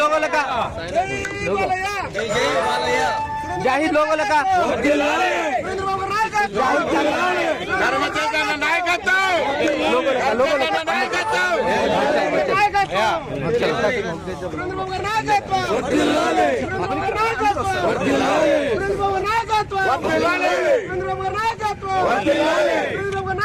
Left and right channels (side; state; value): both; identical; correlation 1.00